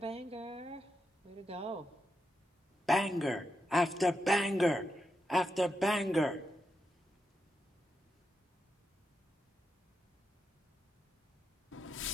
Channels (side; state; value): both; normal; correlation 0.86